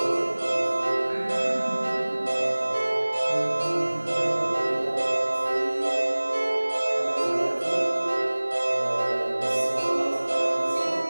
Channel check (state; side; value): inverted; both; correlation -1.00